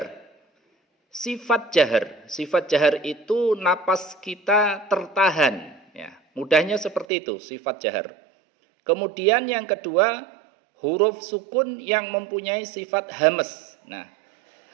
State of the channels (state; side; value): drops out; left; at 7.1 s